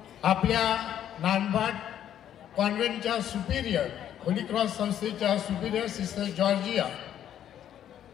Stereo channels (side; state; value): right; quieter; 10.5 dB